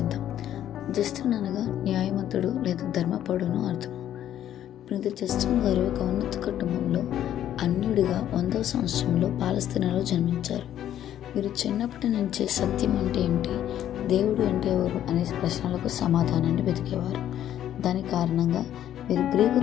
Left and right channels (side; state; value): right; quieter; 11.3 dB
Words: జస్టిన్ అనగా న్యాయవంతుడు లేదా ధర్మపరుడును అర్థం. పునీత జస్టిన్ గారు ఒక ఉన్నత కుటుంబంలో అన్యుడిగా 100వ సంవత్సరంలో పాలస్తీనాలో జన్మించారు. వీరు చిన్నప్పటి నుంచే సత్యం అంటే ఏంటి, దేవుడు అంటే ఎవరు అనే ప్రశ్నలకు సమాధానాన్ని వెతికేవారు. దాని కారణంగా వీరు గ్రీకు